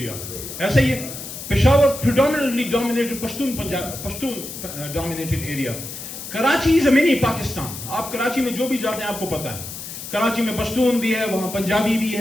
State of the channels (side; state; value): left; noise; hiss, 10 dB below the sound